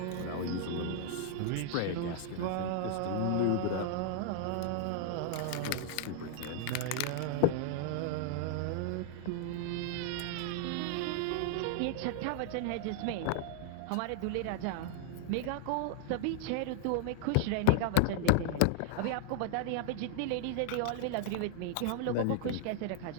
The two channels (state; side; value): different; both; correlation -0.01